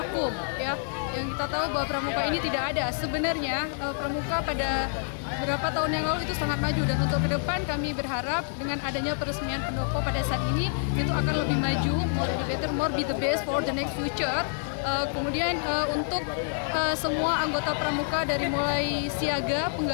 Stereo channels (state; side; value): silent; right; digital silence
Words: ya. Yang kita tahu bahwa pramuka ini tidak ada. Sebenarnya pramuka pada beberapa tahun yang lalu itu sangat maju, dan untuk ke depan kami berharap dengan adanya peresmian pendopo pada saat ini itu akan lebih maju, more be better, more be the best for the next future. Kemudian untuk semua anggota pramuka dari mulai siaga,